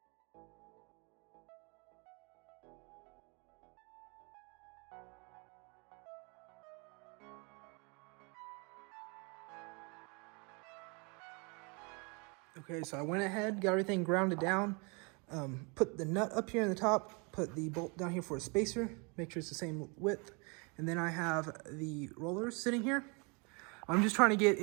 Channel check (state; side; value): quieter; left; 31.9 dB